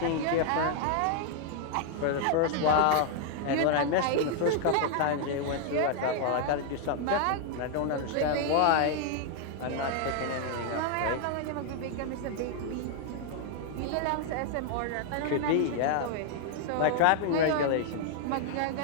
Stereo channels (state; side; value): different; both; correlation 0.00